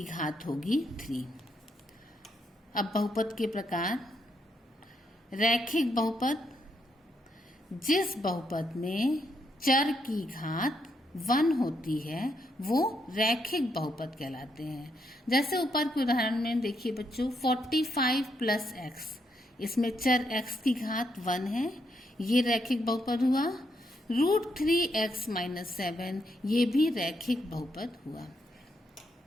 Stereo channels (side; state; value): both; normal; correlation 0.77